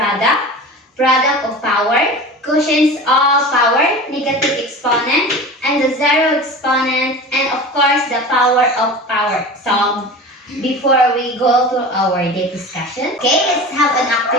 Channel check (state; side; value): normal; both; correlation 0.34